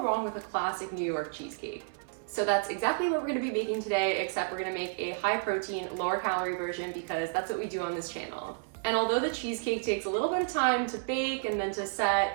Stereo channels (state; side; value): silent; left; 57 dB below the other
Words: wrong with a classic New York cheesecake. So that's exactly what we're gonna be making today, except we're gonna make a high protein, lower calorie version because that's what we do on this channel. And although the cheesecake takes a little bit of time to bake and then to